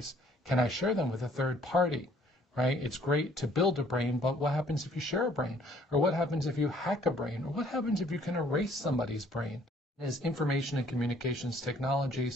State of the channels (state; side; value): normal; both; correlation 0.60